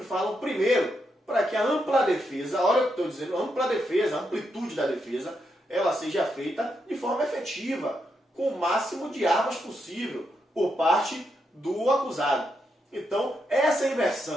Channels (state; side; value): normal; both; correlation 0.82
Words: falam primeiro, para que a ampla defesa, olha o que eu estou dizendo, a ampla defesa, a amplitude da defesa, ela seja feita de forma efetiva, com o máximo de armas possível, por parte do acusado. Então, essa